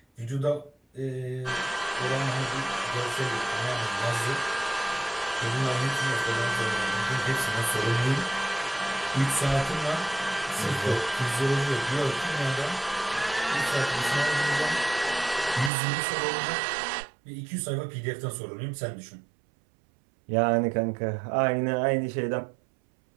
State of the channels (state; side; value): drops out; left; at 15.7 s